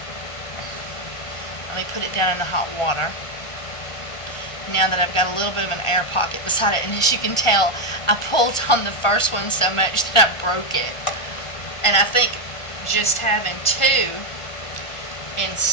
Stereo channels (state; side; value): late; right; 1.5 ms